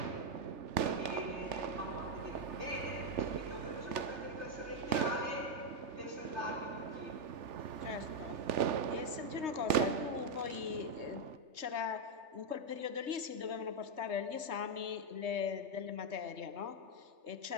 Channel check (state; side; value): late; left; 3.4 ms